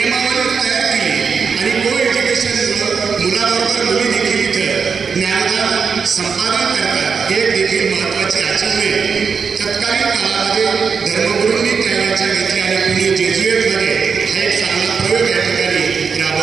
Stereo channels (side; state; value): left; quieter; 5.8 dB